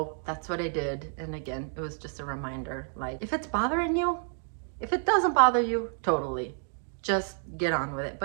that's what I did. And again, it was just a reminder, like, if it's bothering you, if it doesn't bother you, totally, just get on with it.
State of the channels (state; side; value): silent; left; 58 dB below the other